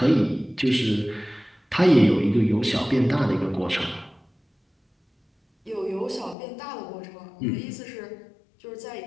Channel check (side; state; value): right; drops out; at 6.4 s